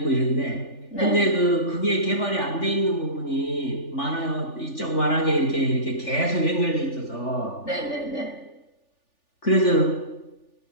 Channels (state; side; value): late; right; 3.4 ms